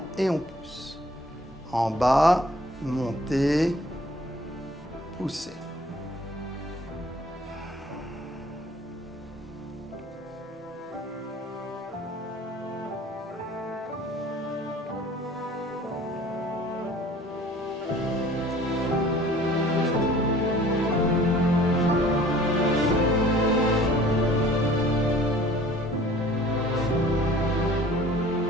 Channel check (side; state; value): both; normal; correlation 0.51